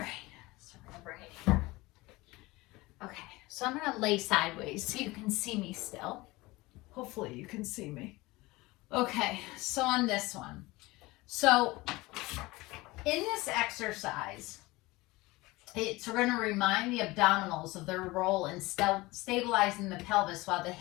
so I'm going to bring it here. Okay, so I'm going to lay sideways so you can see me still. Hopefully you can see me. Okay, so on this one. So in this exercise, It's going to remind the abdominals of their role in stabilizing the pelvis while the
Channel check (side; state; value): right; quieter; 21.2 dB